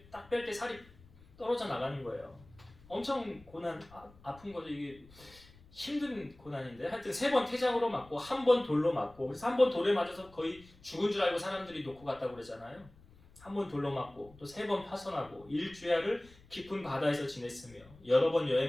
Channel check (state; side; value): noise; left; rumble, 24 dB below the sound